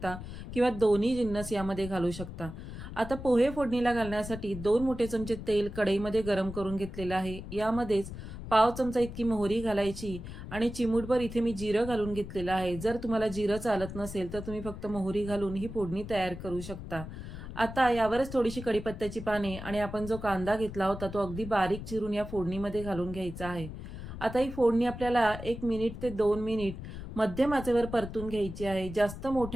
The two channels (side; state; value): left; noise; rumble, 10 dB below the sound